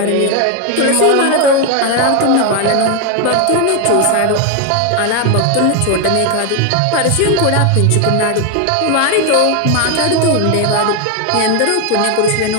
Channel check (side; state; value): both; different; correlation 0.01